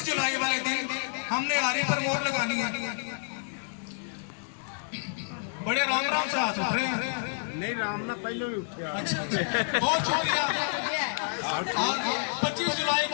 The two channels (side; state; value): right; silent; digital silence